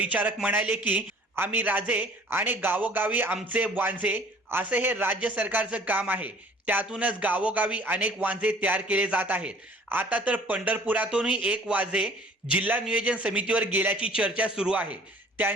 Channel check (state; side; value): normal; both; correlation 0.52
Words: म्हणाले की आम्ही राजे आणि गावोगावी आमचे वांझे असे हे राज्य सरकारचं काम आहे। त्यातूनच गावोगावी अनेक वांझे तयार केले जात आहेत। आता तर पंढरपुरातूनही एक वांझे जिल्हा नियोजन समितीवर गेल्याची चर्चा सुरू आहे।